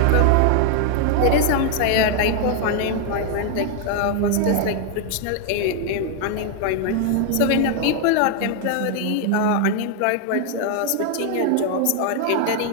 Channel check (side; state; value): both; different; correlation 0.00